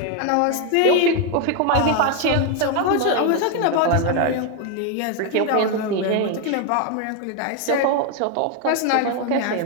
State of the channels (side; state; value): both; different; correlation 0.01